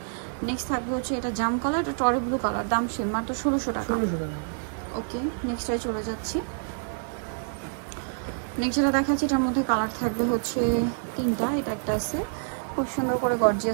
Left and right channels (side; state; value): left; silent; 60 dB below the other